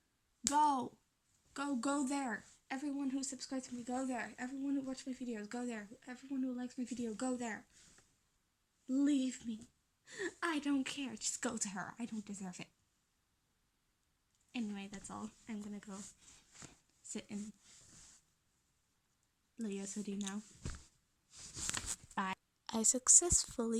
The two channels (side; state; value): both; identical; correlation 1.00